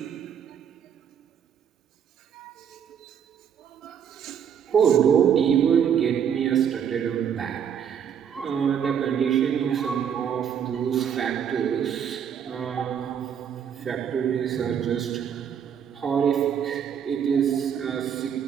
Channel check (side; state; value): left; quieter; 8.2 dB